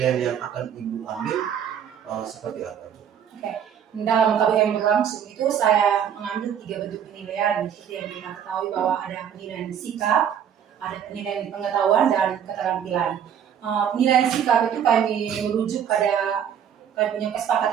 yang akan Ibu ambil seperti apa? Dalam KBM berlangsung itu saya mengambil 3 bentuk penilaian. Seperti yang kita ketahui bahwa ada penilaian sikap, ada penilaian pengetahuan, dan keterampilan. Penilaian sikap itu kami merujuk pada kami punya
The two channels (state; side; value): quieter; left; 8.7 dB